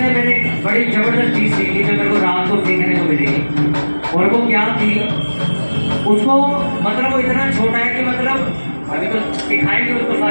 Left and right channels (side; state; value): both; inverted; correlation -1.00